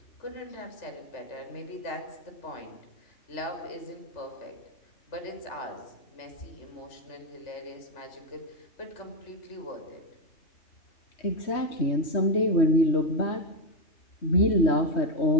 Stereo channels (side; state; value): right; late; 3.2 ms